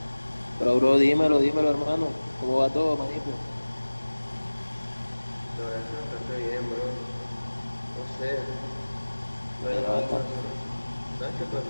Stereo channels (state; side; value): inverted; both; correlation -1.00